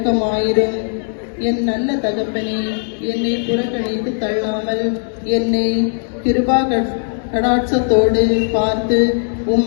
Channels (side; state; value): right; silent; 68 dB below the other